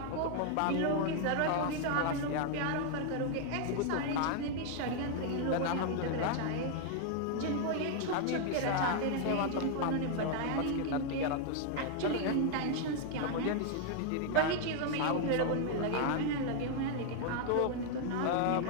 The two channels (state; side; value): different; both; correlation 0.00